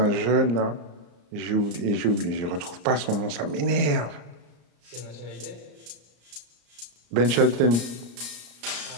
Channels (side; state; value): left; late; 34 ms